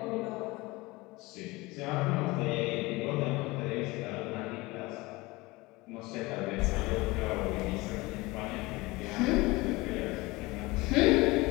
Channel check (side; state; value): right; quieter; 22.2 dB